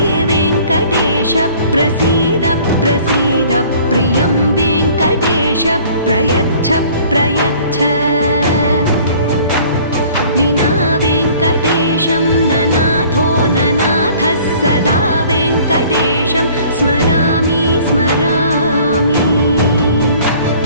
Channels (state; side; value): inverted; both; correlation -0.52